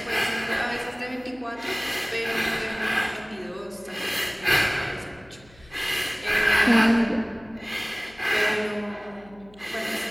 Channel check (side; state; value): left; noise; hum, 26 dB below the sound